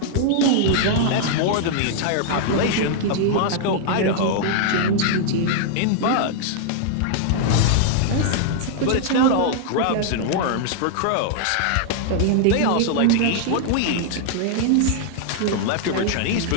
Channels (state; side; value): different; both; correlation -0.01